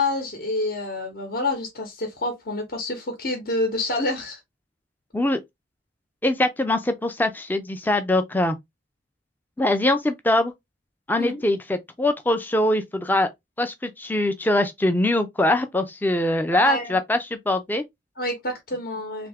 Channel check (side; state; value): both; normal; correlation 0.59